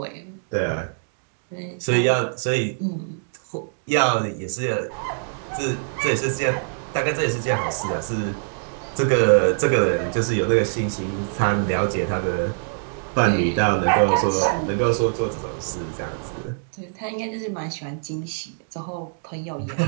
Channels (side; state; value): left; silent; digital silence